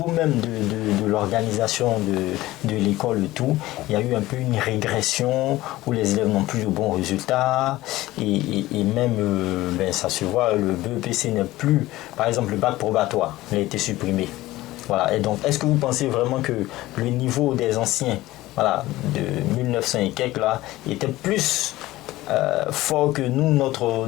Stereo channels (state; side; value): quieter; right; 17.3 dB